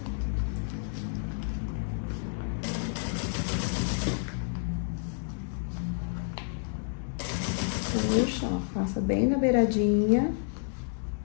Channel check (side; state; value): right; silent; 58 dB below the other